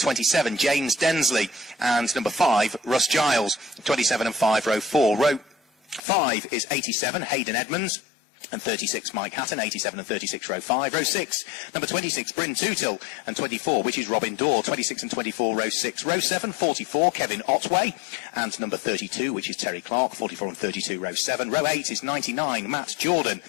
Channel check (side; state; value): right; drops out; at 6.0 s